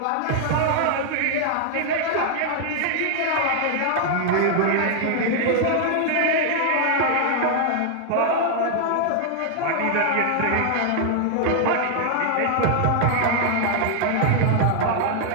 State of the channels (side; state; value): both; different; correlation 0.00